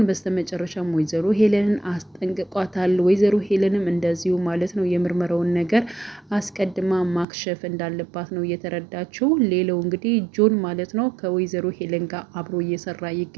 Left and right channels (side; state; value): left; drops out; at 7.2 s